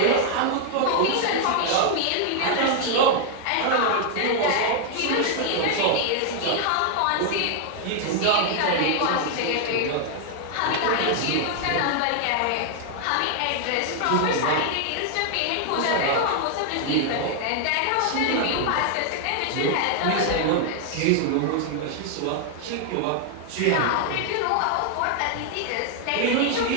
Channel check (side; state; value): both; different; correlation 0.00